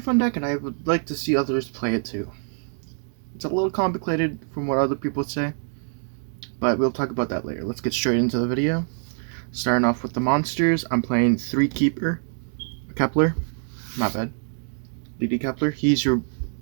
deck, and I would like to see others play it too. It's a little complicated from what other people say, but we'll talk about that later. Let's get straight into the video. Starting off with the monsters, I'm playing 3 Keeper Kepler. Not bad. DD Kepler. He's your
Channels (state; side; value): silent; left; 62 dB below the other